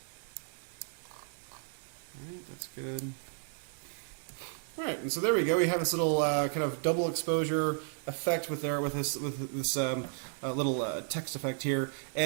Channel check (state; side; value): silent; left; 55 dB below the other